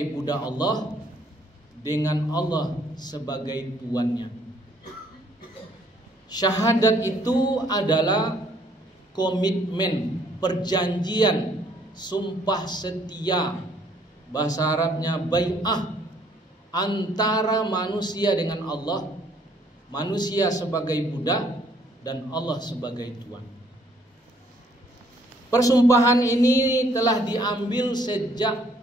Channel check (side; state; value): both; normal; correlation 0.64